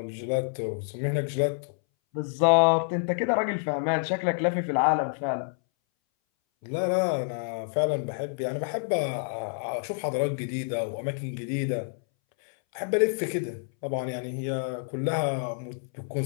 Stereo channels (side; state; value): right; silent; 59 dB below the other